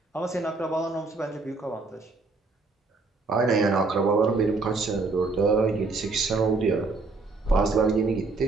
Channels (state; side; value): quieter; left; 3.8 dB